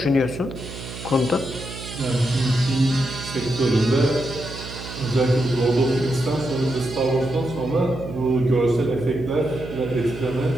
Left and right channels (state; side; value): noise; right; hum, 11 dB below the sound